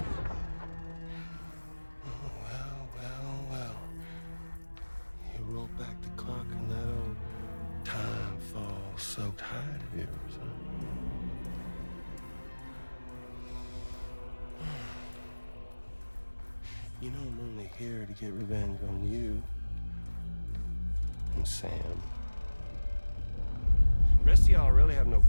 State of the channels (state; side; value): inverted; both; correlation -1.00